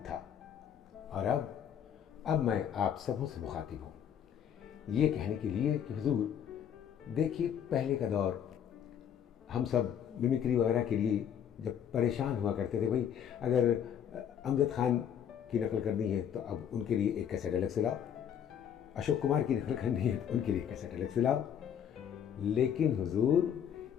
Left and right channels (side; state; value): right; quieter; 8.9 dB